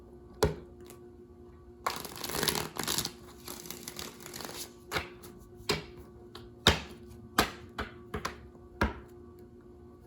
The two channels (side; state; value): both; identical; correlation 1.00